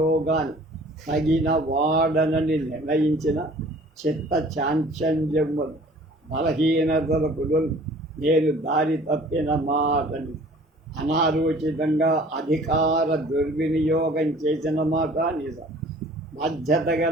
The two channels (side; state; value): both; normal; correlation 0.50